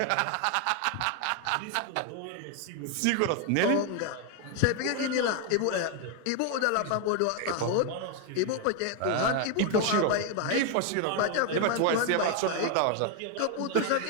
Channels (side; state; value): both; different; correlation 0.01